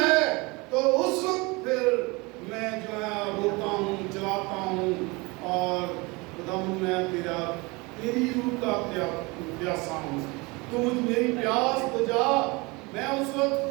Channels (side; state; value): left; quieter; 25.8 dB